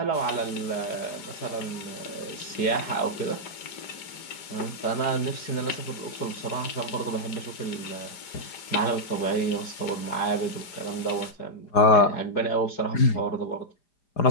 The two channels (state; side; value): late; right; 5.1 ms